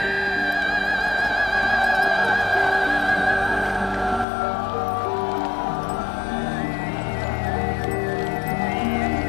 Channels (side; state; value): right; drops out; at 4.2 s